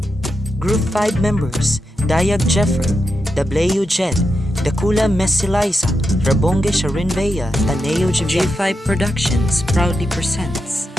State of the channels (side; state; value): both; normal; correlation 0.87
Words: Group 5 members Dayag Jeffrey, Dableu Jed, Dakula Messi Liza, Rabonge Sharin Bea, Taneo J5 Productions proudly presents.